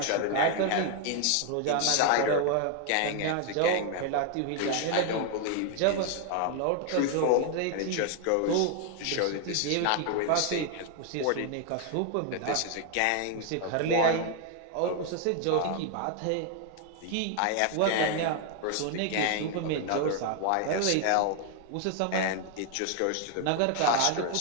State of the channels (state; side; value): different; both; correlation 0.00